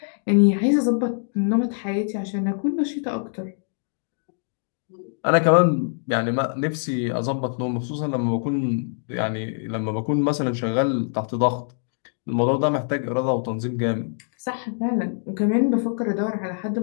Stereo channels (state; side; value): silent; right; digital silence